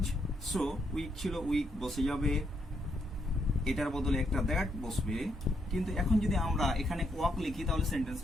শো, উইক ছিল উইক বসে যাবে, এটার বদলে একটা দ্যাট বসবে। কিন্তু এখন যদি আমরা এখানে ওয়াক লিখি তাহলে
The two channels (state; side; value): normal; both; correlation 0.76